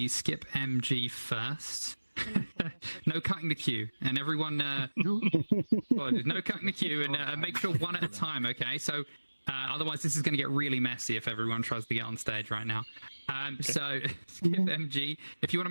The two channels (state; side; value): inverted; both; correlation -1.00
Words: Skip MG first. No cutting the queue, and everyone no cutting the queue, and make sure one at a time, okay? So otherwise this is going to get really messy if everyone tries to get on stage right now. So Skip MG, if you want to